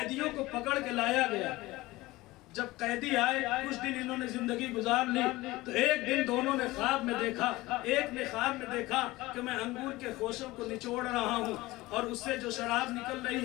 کو پکڑ کے لایا گیا۔ جب قیدی آئے کچھ دن انہوں نے زندگی گزار لی، تو ایک دن دونوں نے خواب میں دیکھا، ایک نے خواب میں دیکھا کہ میں انگور کے خوشوں کو نچوڑ رہا ہوں اور اس سے جو شراب نکل رہی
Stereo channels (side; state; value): right; quieter; 19.5 dB